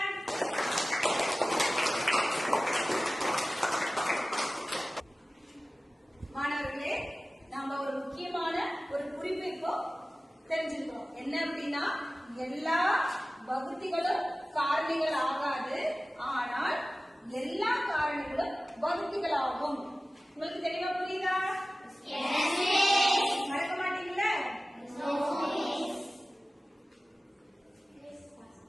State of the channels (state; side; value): normal; both; correlation 0.97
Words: மாணவர்களே, நாம ஒரு முக்கியமான ஒரு குறிப்பு இப்போ தெரிஞ்சுக்கிறோம். என்ன அப்படின்னா, எல்லா வகுத்திகளும் காரணிகள் ஆகாது, ஆனால் எல்லா காரணிகளும் வகுத்திகள் ஆகும். உங்களுக்கு தெளிவா புரியுதா? மறக்க மாட்டீங்களா?